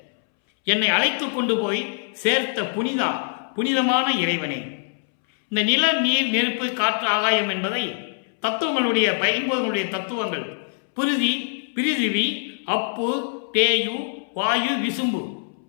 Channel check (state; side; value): silent; right; 63 dB below the other